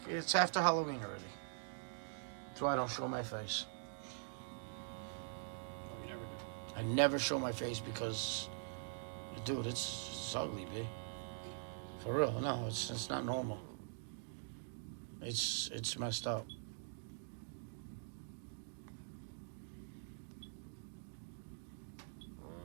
it's after Halloween already. That's why I don't show my face. I never show my face because, dude, it's ugly, B. For real, no, it's not normal. It's messed up.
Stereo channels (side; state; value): left; silent; digital silence